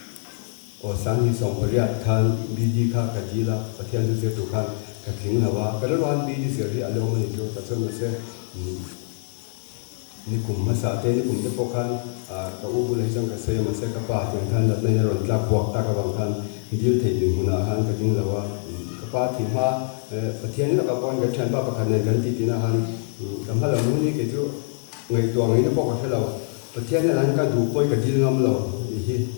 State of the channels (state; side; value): silent; right; 59 dB below the other